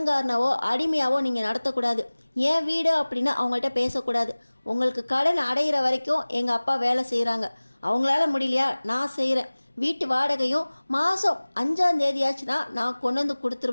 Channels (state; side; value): inverted; both; correlation -1.00